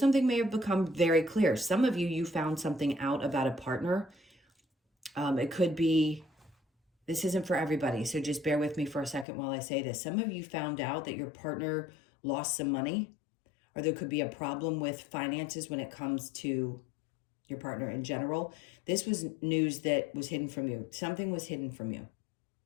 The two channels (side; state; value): right; drops out; at 9.2 s